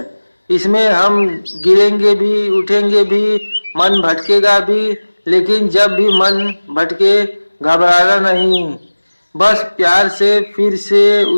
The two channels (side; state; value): both; inverted; correlation -1.00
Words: इसमें हम गिरेंगे भी, उठेंगे भी, मन भटकेगा भी, लेकिन जब भी मन भटके घबराना नहीं, बस प्यार से फिर से